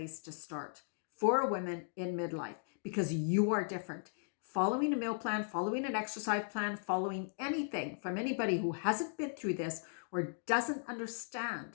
to start for women in midlife because you are different. Following a meal plan, following an exercise plan, following anything from anybody who hasn't been through this or doesn't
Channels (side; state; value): right; silent; digital silence